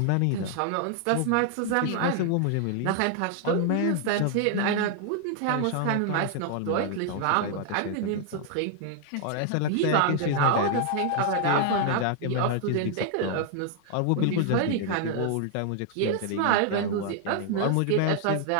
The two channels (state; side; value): different; both; correlation 0.00